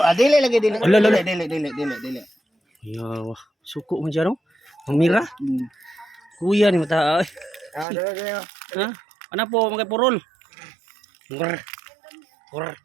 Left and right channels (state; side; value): drops out; left; at 7.9 s